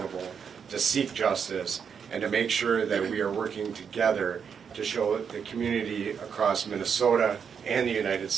to seek justice, and to make sure that we are working together to show the community across Minnesota and the United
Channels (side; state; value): left; quieter; 6.9 dB